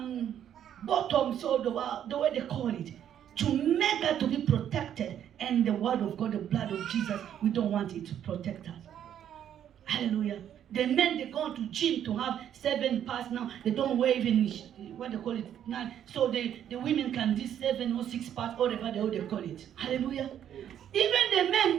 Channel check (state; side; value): quieter; left; 10.0 dB